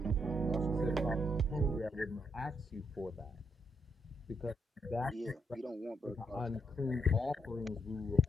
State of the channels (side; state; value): both; normal; correlation 0.77